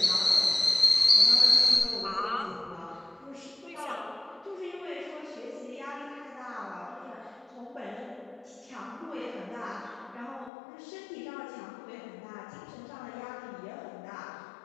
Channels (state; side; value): drops out; right; at 10.5 s